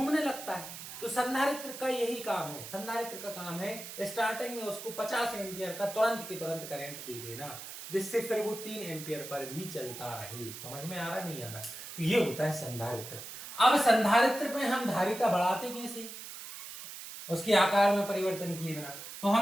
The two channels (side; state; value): right; noise; hiss, 11 dB below the sound